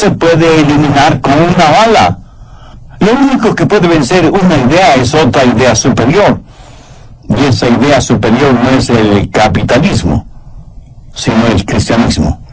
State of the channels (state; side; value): identical; both; correlation 1.00